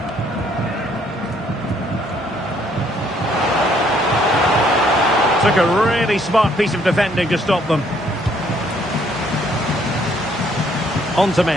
Took a really smart piece of defending to stop them. On to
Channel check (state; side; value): normal; both; correlation 0.66